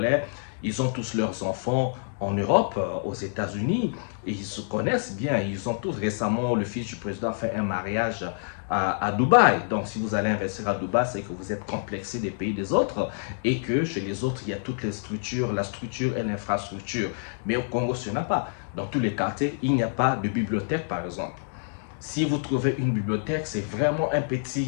ils ont tous leurs enfants en Europe, aux États-Unis, et ils se connaissent bien. Ils ont tous récemment, le fils du président a fait un mariage à Dubaï. Donc, si vous allez investir à Dubaï, c'est que vous êtes complexé des pays des autres et que chez les autres, il y a toutes les structures, la structure et l'infrastructure. Mais au Congo, ce n'est pas. Dans tous les quartiers, il n'y a pas de bibliothèque, par exemple. Si vous trouvez une bibliothèque, c'est vraiment un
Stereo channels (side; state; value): right; silent; digital silence